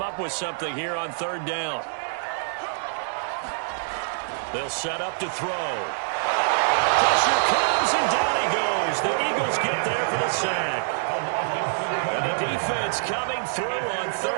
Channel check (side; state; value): left; silent; digital silence